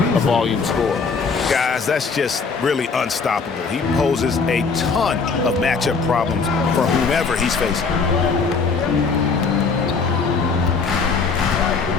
a volume scorer. Guys, that's just really unstoppable. He poses a ton of matchup problems for whomever he's facing.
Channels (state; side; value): quieter; right; 4.9 dB